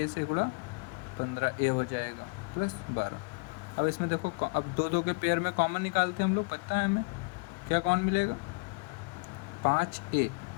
से गुणा 15a हो जाएगा + 12। अब इसमें देखो, अब 2 के पेयर में कॉमन निकालते हैं हम लोग, पता है हमें क्या कौन मिलेगा, 5a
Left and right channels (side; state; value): right; quieter; 33.9 dB